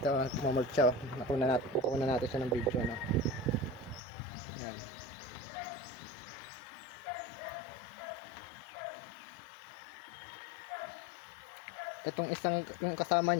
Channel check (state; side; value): drops out; right; at 4.0 s